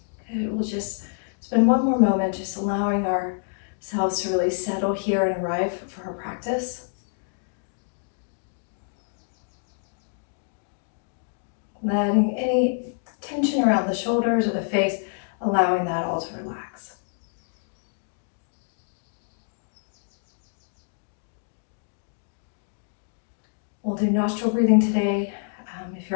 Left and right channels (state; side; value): silent; right; digital silence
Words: Good, we'll just spend one more moment just allowing ourselves to really settle here and arrive for our practice. Letting any tension around the shoulders or the face, allowing that all to relax. We'll do nostril breathing today. If